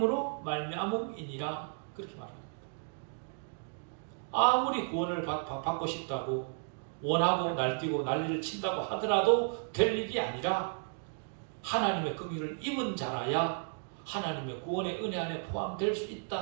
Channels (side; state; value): left; silent; 55 dB below the other